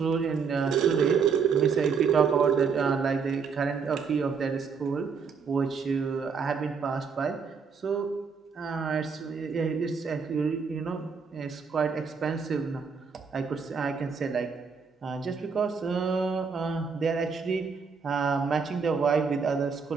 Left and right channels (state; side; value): quieter; left; 5.7 dB